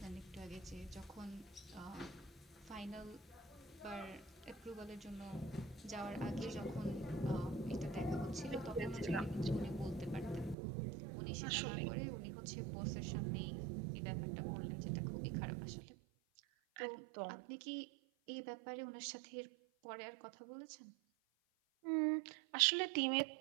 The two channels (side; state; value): left; drops out; at 10.6 s